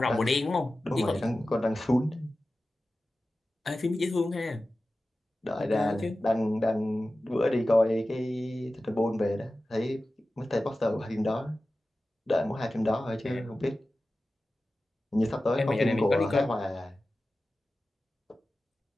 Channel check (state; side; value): normal; both; correlation 0.95